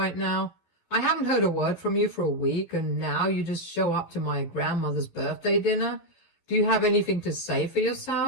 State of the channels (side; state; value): right; late; 12 ms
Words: now? I haven't heard a word from you for a week, and now you just show up to my grandmother's birthday dinner? Do you have anything to say for